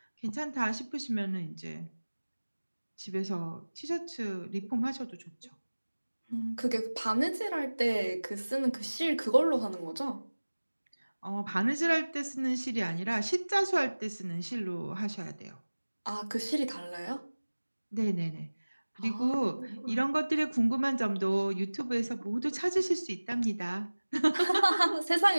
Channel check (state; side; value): inverted; both; correlation -1.00